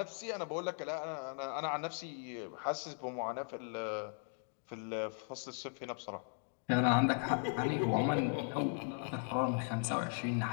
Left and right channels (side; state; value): right; silent; 52 dB below the other